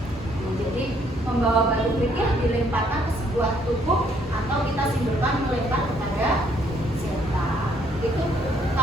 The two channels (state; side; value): normal; both; correlation 0.67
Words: Jadi membawa batu kerikil dilemparkan ke sebuah tubuh atau kita simbolkan melempar kepada setan. Itu